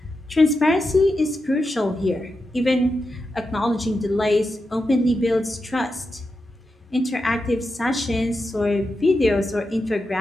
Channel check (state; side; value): normal; both; correlation 0.88